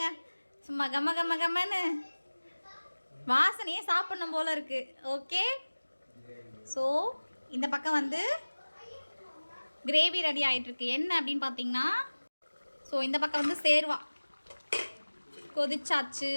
சும்மா கம்மன்னு வாசனையே சாப்பிடணும் போல இருக்கு. ஓகே, ஸோ இந்த பக்கம் வந்து கிரேவி ரெடி ஆகிட்டு இருக்கு. என்ன அப்படின்னு பார்த்தீங்கன்னா, ஸோ இந்த பக்கம் வந்து சேர்வா கொதிச்சாச்சு.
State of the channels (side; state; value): both; inverted; correlation -1.00